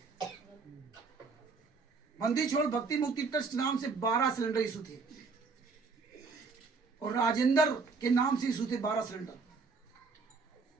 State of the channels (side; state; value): left; quieter; 4.6 dB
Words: बंदी छोड़ भक्ति मुक्ति ट्रस्ट नाम से 12 सिलेंडर इशू थे, और राजेंद्र के नाम से इशू थे 12 सिलेंडर।